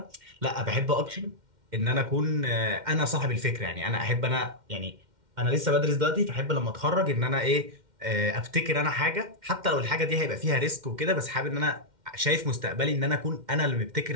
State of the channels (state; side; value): late; left; 2.1 ms